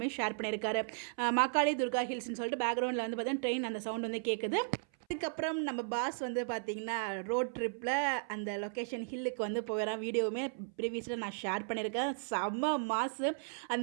ஷேர் பண்ணியிருக்காரு. மாக்காளி துர்கா ஹில்ஸ்னு சொல்லிட்டு பேக்ரவுண்டில் வந்து பார்த்தீங்கன்னா ட்ரெயின் அந்த சவுண்ட் வந்து கேட்குது. அதுக்கப்புறம் நம்ம பாஸ் வந்து பார்த்திங்கன்னா ரோட் ட்ரிப்பில் அந்த லொக்கேஷன் ஹில்லுக்கு வந்து போகிறேன். வீடியோவுமே ப்ரீவியஸில் நான் ஷேர் பண்ணியிருக்கேன். செம்ம மாசு.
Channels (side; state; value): left; silent; 54 dB below the other